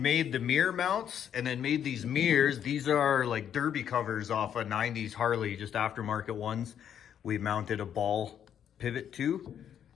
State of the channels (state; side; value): quieter; right; 9.2 dB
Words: the mirror mounts and then made these mirrors. These are like derby covers off a 90s Harley, just aftermarket ones. We mounted a ball pivot to,